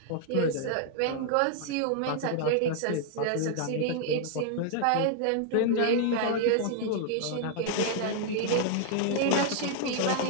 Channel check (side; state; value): both; different; correlation 0.00